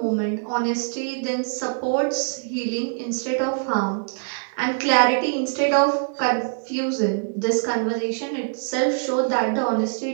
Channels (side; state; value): left; silent; 63 dB below the other